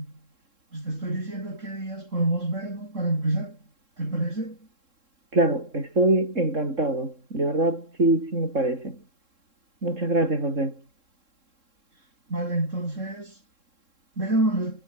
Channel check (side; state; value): left; late; 3.7 ms